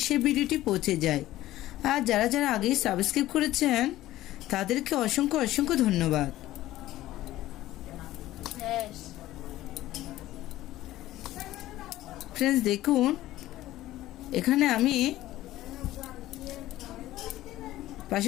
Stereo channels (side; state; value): right; quieter; 15.3 dB